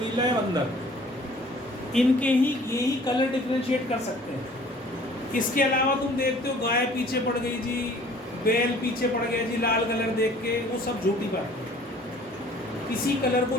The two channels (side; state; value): both; normal; correlation 0.52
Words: या बंदर, इनके ही यही कलर डिफरेंशिएट कर सकते हैं। इसके अलावा तुम देखते हो गाय पीछे पड़ गई जी, बैल पीछे पड़ गया जी लाल कलर देख के, वो सब झूठी बात है। किसी कलर को